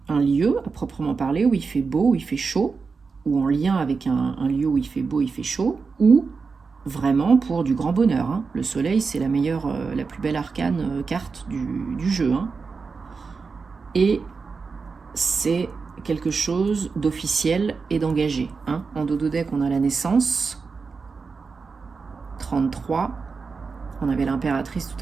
un lieu à proprement parler où il fait beau, où il fait chaud, ou en lien avec un lieu où il fait beau, il fait chaud, ou vraiment pour du grand bonheur. Hein. Le soleil, c'est la meilleure, la plus belle arcane carte du jeu. Hein. Et c'est quelque chose d'officiel et d'engagé. Hein. En dododeck, on a la naissance, 33. On avait l'impératrice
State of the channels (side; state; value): left; quieter; 4.8 dB